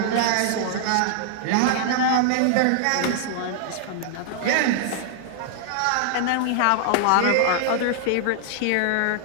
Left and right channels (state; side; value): different; both; correlation 0.00